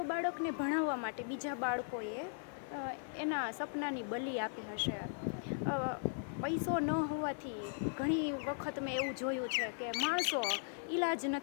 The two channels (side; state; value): right; silent; 52 dB below the other